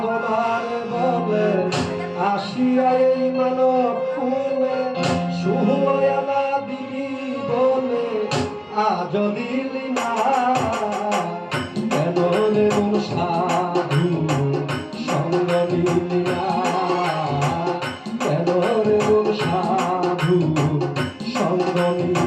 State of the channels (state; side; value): identical; both; correlation 1.00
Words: বলে আসিয়া এই মানব কুলে সুহয়ালা দিবি বলে আজ দিলি না। কেন রে মন সাধু সঙ্গ নিলি না। কেন রে মন সাধু সঙ্গ